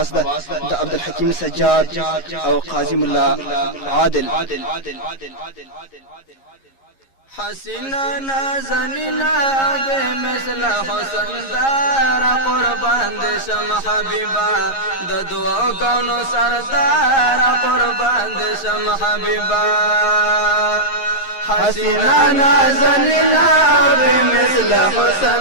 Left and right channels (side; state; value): right; late; 11 ms